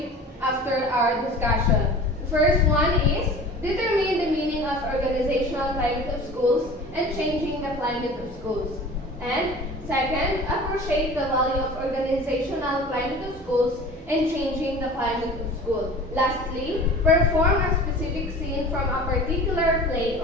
after our discussion. The first one is determine the meaning of organizational climate of schools and changing the climate of schools. And second, appreciate the value of organizational climate of schools and changing the climate of school. Lastly, perform a specific scene from a particular play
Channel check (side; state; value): both; normal; correlation 0.40